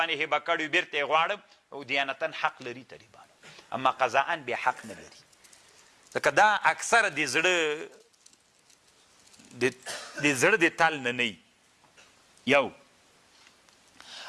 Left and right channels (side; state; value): both; identical; correlation 1.00